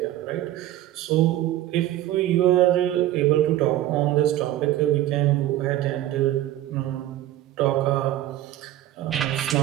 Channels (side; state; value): left; quieter; 13.8 dB